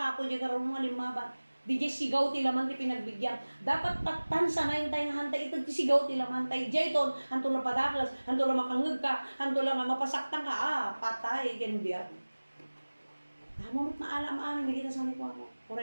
di karon mga limaban. Di jay sigaw ti laman ti pinagbigyan. Dapat taktan sa nayin tayo nga hantay ito ti sigaw ti laman tayo. Jay ton, hanto lang padaklas, hanto lang makangag ka, hanto lang mapasaktan ka, patay, ken biyan. Amumot na alam amin, nakita sa ni ko mo.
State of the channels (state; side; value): inverted; both; correlation -1.00